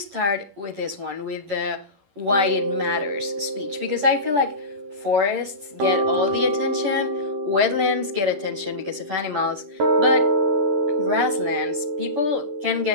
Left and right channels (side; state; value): left; late; 10 ms